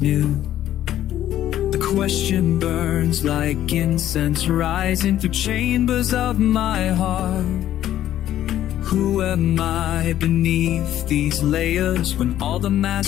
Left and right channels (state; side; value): quieter; right; 12.2 dB